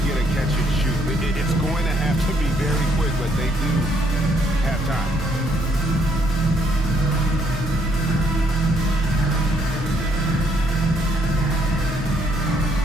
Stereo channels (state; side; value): normal; both; correlation 0.70